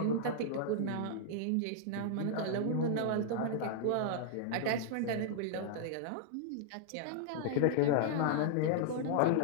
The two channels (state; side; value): different; both; correlation -0.01